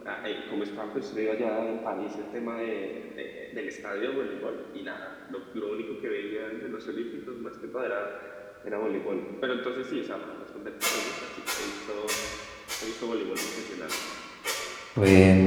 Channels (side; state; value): both; identical; correlation 1.00